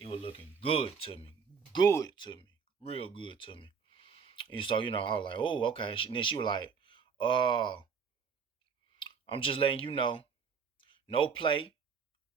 was looking good to me. Good to me. Real good to me. And so, I was like, oh, okay. And then she was like, uh, I'm just letting you know, no play.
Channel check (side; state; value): left; quieter; 6.1 dB